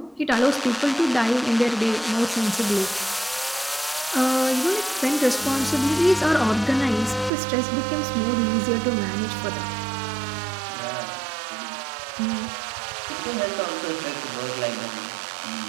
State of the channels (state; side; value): drops out; left; at 7.3 s